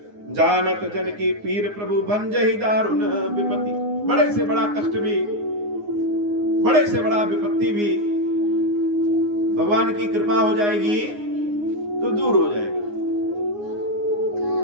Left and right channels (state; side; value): late; left; 9.6 ms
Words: जानत जन की पीर प्रभु भंजहि दारुण विपत्ति। बड़े से बड़ा कष्ट भी, बड़े से बड़ा विपत्ति भी भगवान की कृपा हो जाएगी तो दूर हो जाएगा।